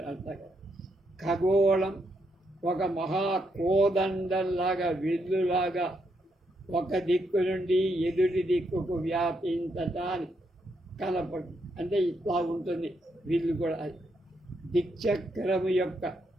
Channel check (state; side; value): normal; both; correlation 0.78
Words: అంతా. ఖగోళం ఒక మహాకోదండంలాగా, విల్లులాగా ఒక దిక్కు నుండి ఎదుటి దిక్కుకు వ్యాపించటానికి కనపడు, అంటే ఇట్లా ఉంటుంది విల్లు కూడా. అది దిక్చక్రము యొక్క